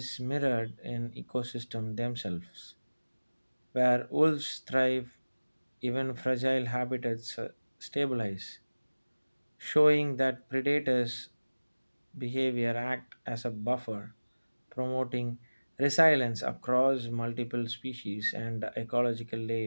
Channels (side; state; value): both; inverted; correlation -1.00